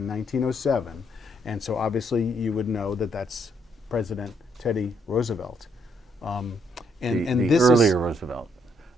1907. And so obviously you would know that that's President Teddy Roosevelt. The earlier Roosevelt.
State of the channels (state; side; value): normal; both; correlation 0.73